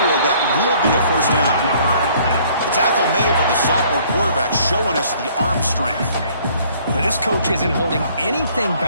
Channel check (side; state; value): both; inverted; correlation -0.59